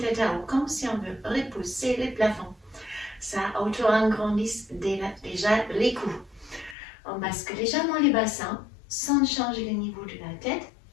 à haut, comme si on veut repousser les plafonds. Ça auto-agrandit déjà les coups. On bascule légèrement les bassins, sans changer le niveau de la tête.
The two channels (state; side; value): drops out; right; at 6.8 s